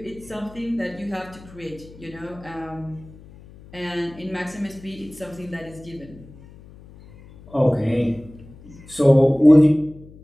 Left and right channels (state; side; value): noise; left; hum, 21 dB below the sound